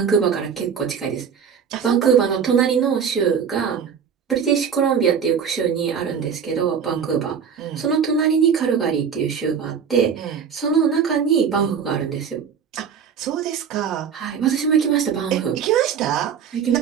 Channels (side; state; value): left; quieter; 7.2 dB